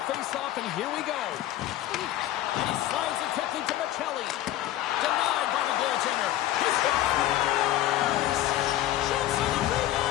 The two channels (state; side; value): quieter; right; 13.8 dB